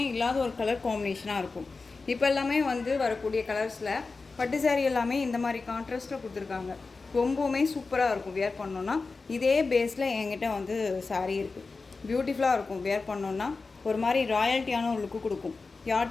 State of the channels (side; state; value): right; quieter; 4.1 dB